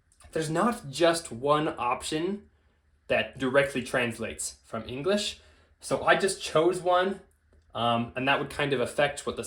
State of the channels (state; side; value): identical; both; correlation 1.00